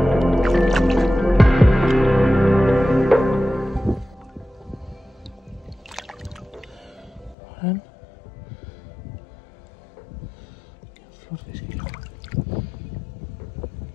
Sådan. Flot fisk.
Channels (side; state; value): right; drops out; at 7.4 s